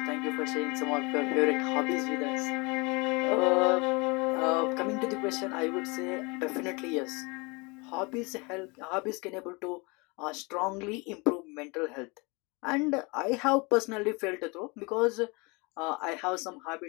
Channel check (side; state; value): right; quieter; 28.1 dB